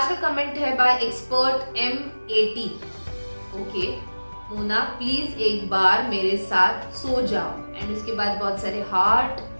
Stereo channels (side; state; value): both; inverted; correlation -1.00